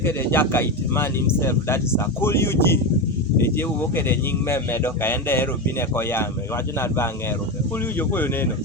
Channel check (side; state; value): both; normal; correlation 0.16